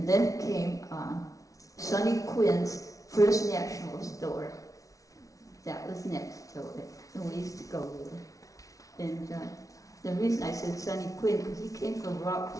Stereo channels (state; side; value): late; right; 0.17 ms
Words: then came Sonny Quinn's First National Store. That was next to it, and we used to go there. And the reason I said Sonny Quinn, because he came from